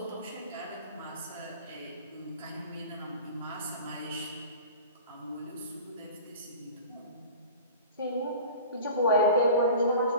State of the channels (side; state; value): both; inverted; correlation -0.38